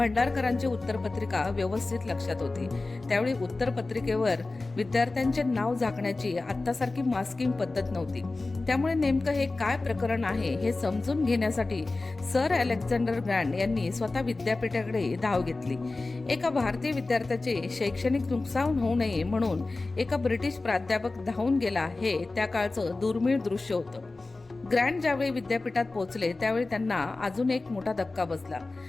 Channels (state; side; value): quieter; right; 3.3 dB